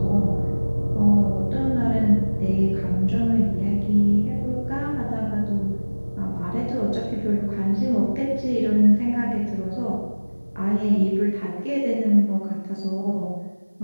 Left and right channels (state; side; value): inverted; both; correlation -1.00